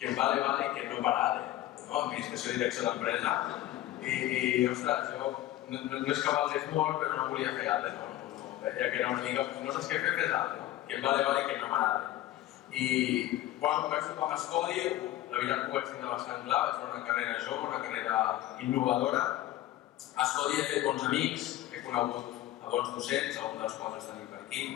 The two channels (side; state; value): right; quieter; 14.5 dB